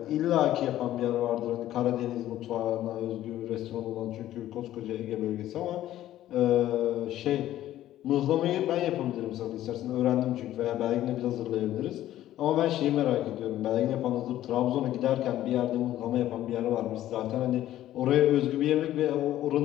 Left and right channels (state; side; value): quieter; right; 13.3 dB